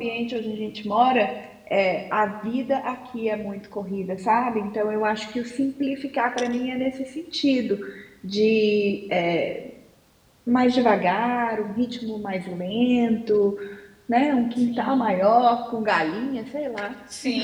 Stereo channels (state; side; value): identical; both; correlation 1.00